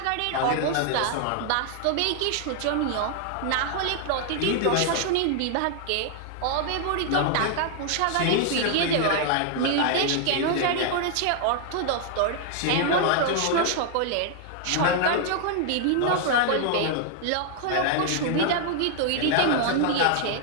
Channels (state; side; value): different; both; correlation 0.00